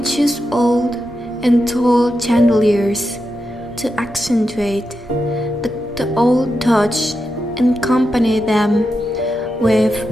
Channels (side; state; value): both; normal; correlation 0.87